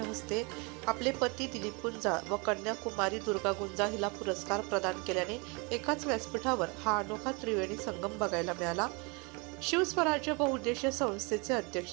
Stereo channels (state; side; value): quieter; left; 30.1 dB